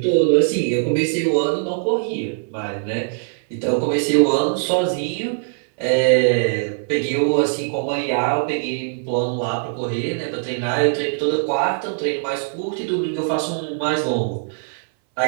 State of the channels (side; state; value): left; silent; 60 dB below the other